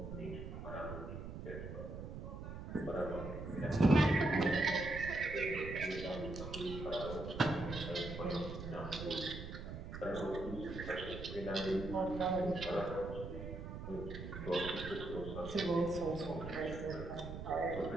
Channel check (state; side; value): noise; right; rumble, 8 dB below the sound